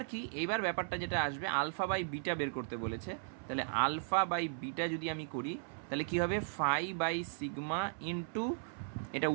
কি, এইবার ব্যাপারটা যেটা আসবে আলফা বাই বিটা বের করতে বলেছে, তাহলে আলফা বাই বিটা যদি আমি করি তাহলে কি হবে ফাই বাই সিগমা ইন্টু, এটা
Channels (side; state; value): left; silent; 53 dB below the other